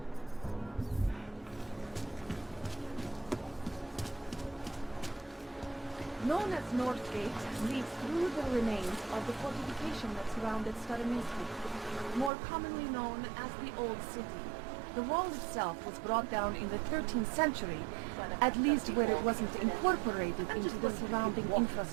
Known as North Gate, leads through the remains of the fortification that surrounded Starominski, more commonly known as the Old City. The wall itself was brought down in the 13th century, at least where it wasn't incorporated into the surrounding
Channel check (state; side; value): drops out; left; at 12.3 s